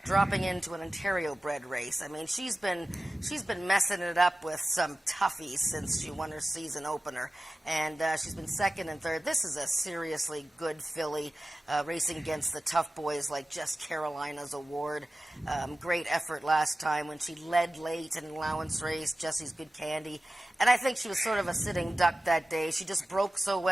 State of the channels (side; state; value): both; normal; correlation 0.95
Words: dropping into an Ontario-bred race. I mean, she's been messing it up with some toughies since she won her season opener, and she's been second and third. This is a seriously good filly, racing against the tough boys like Just Carolina's Award. Great effort last time when she led late in an allowance race. Jesse's Good Candy. And I think she was sort of a sitting duck that day. She just broke so